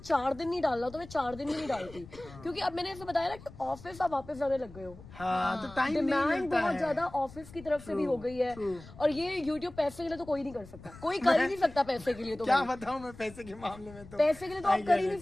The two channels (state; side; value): noise; left; rumble, 18 dB below the sound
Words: दिन नहीं डालना तो मैं 4 दिन भी नहीं डालती, क्योंकि अब मैंने ऐसे बताया ना कि ऑफिस आप वापस जाने लग गए हो। हाँ, तो टाइम नहीं डिमांड मिलता बहुत है। ज्यादा ऑफिस की तरफ से भी हो गई है। और ये यूट्यूब पैसे के लिए तो कोई नहीं कर सकता, कोई कर ही नहीं सकता पैसे के लिए। तो क्या भाई, बताऊं मैं पैसे के मामले में तो पैसे के लिए तो आप कर ही नहीं